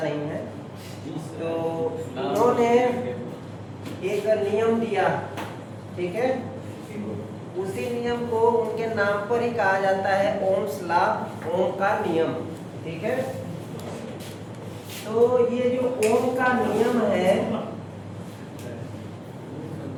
है। तो उन्होंने एक नियम दिया, ठीक है। उसी नियम को उनके नाम पर ही कहा जाता है ओम्स लॉ, ओम का नियम, ठीक है। तो ये जो ओम का नियम है,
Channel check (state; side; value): identical; both; correlation 1.00